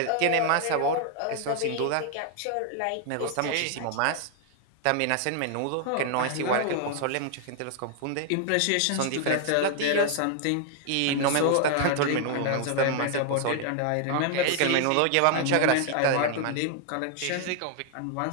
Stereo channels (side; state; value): both; different; correlation 0.00